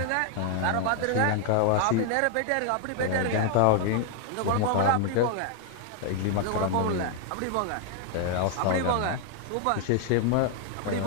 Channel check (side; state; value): both; different; correlation 0.00